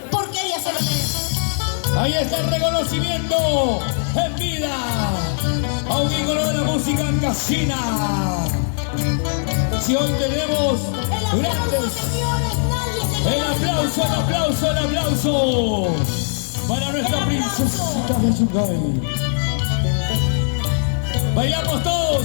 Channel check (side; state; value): right; silent; digital silence